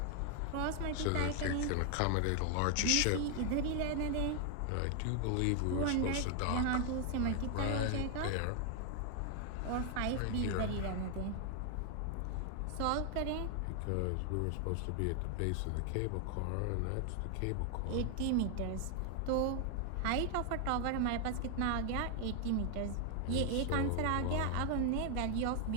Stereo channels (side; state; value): both; different; correlation 0.00